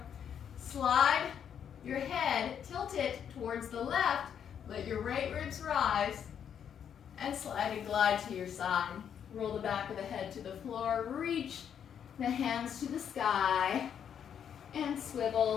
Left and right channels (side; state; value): right; quieter; 8.4 dB